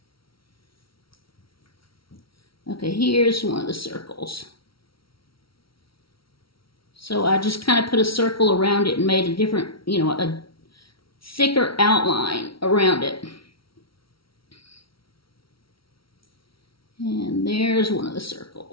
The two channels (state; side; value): late; right; 0.75 ms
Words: Okay, here's one of the circles. So I just kind of put a circle around it and made a different, you know, a thicker outline around it. And there's one of the